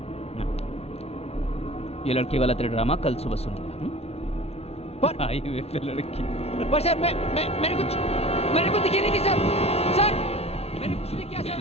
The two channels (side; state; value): right; late; 0.30 ms